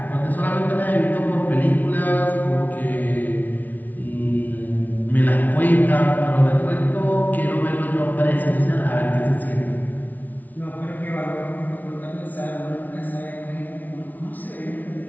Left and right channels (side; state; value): right; late; 0.078 ms